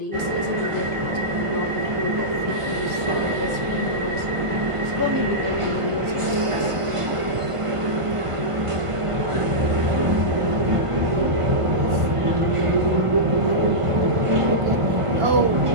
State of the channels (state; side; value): late; left; 1.5 ms